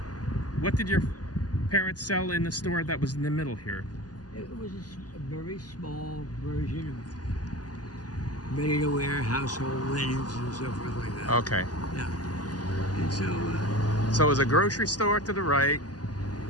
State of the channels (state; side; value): late; right; 0.69 ms